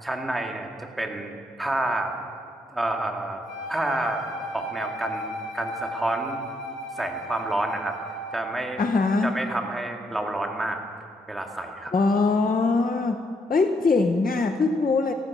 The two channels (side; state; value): both; normal; correlation 0.75